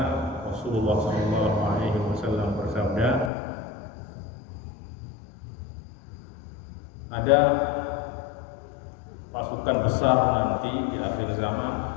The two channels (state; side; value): drops out; right; at 3.3 s